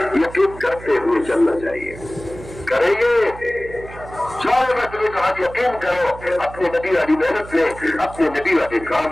یقین کرتے ہوئے چلنا چاہیے۔ کریں گے سارے مسئلے کا حل یقین کرو اپنے نبی والی محنت میں، اپنے نبی والے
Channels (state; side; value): noise; right; hum, 15 dB below the sound